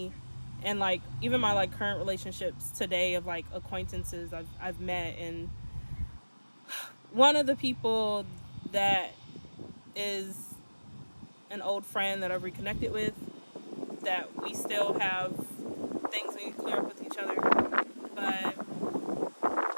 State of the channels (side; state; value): both; inverted; correlation -1.00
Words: And like even my like current relationships today of like acquaintances I've met, and one of the people that is an old friend that I've reconnected with, that we still have things we need to clear up with each other. But